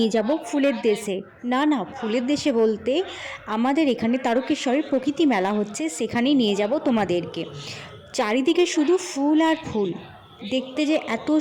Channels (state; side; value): identical; both; correlation 1.00